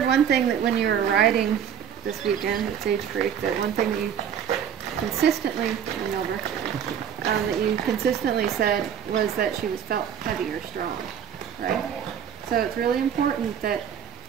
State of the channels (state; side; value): quieter; left; 8.8 dB